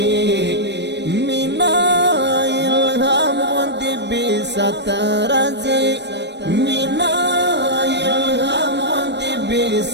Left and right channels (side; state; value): left; late; 0.50 ms